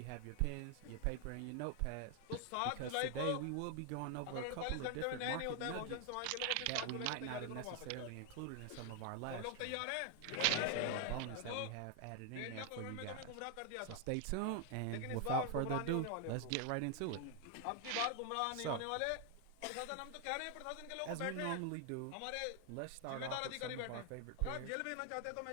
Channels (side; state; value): both; different; correlation 0.00